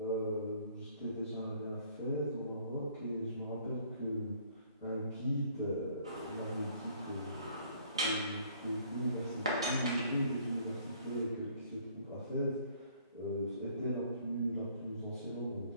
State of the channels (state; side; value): inverted; both; correlation -0.60